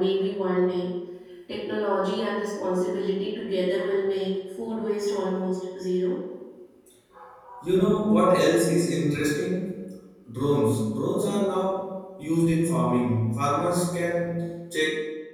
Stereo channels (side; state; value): both; identical; correlation 1.00